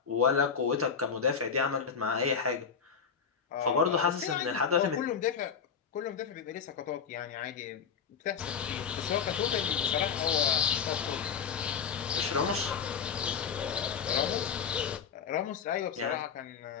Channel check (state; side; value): quieter; right; 6.7 dB